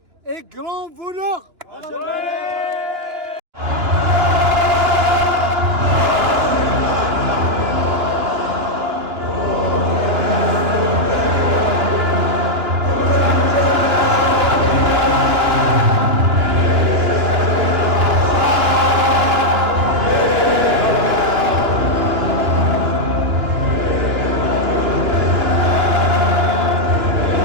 est grand voleur.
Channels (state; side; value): late; left; 2.9 ms